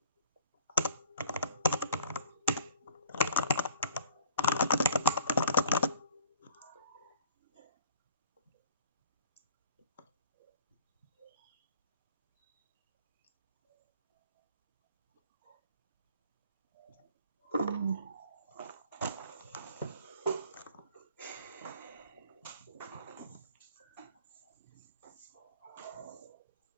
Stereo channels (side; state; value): both; inverted; correlation -0.51